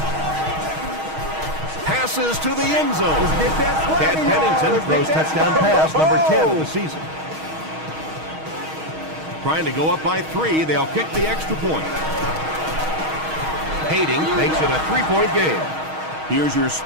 Passes to the end zone. Chad Pennington throws touchdown pass number 10 of the season. Trying to go up by 3. They'll kick the extra point. Skating makes it a 3-point game. Here's your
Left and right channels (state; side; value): late; left; 6.4 ms